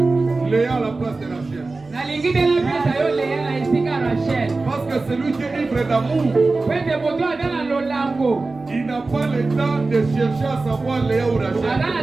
Léa à la place de Rachel. Parce que celui qui est ivre d'amour, il n'a pas le temps de chercher à savoir Léa ou Rachel.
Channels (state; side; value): quieter; left; 3.5 dB